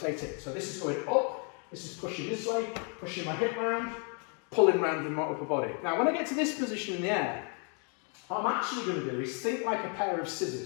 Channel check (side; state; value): right; quieter; 39.3 dB